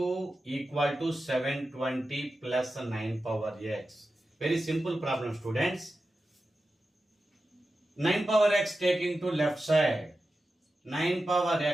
equal to 720 plus 9 power x. Very simple problem students. 9 power x taking to left side. 9 power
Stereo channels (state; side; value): normal; both; correlation 0.92